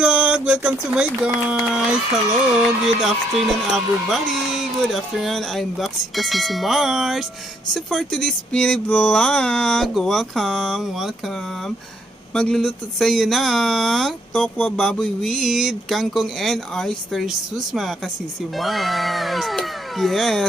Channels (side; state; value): both; normal; correlation 0.71